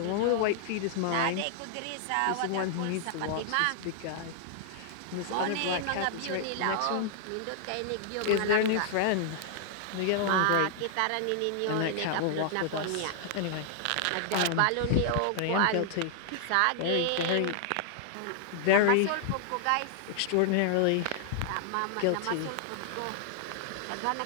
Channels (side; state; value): both; different; correlation -0.01